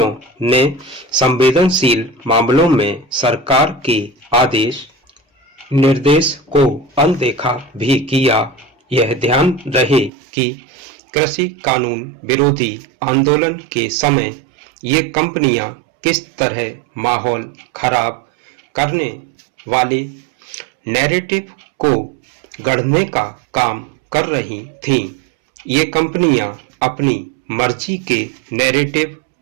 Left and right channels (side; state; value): left; drops out; at 10.1 s